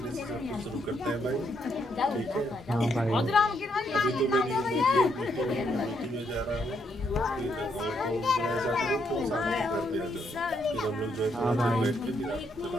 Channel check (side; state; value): both; normal; correlation 0.75